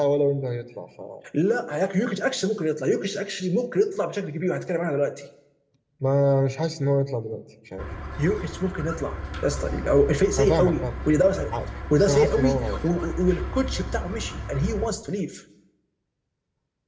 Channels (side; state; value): both; identical; correlation 1.00